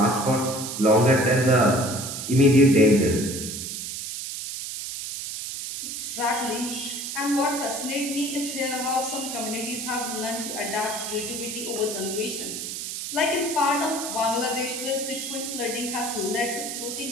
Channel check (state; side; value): noise; right; hiss, 6 dB below the sound